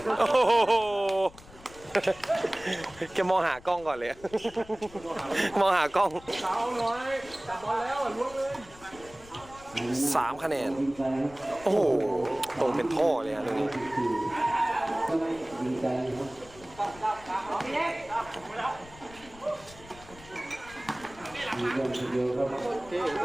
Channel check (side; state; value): left; noise; rumble, 21 dB below the sound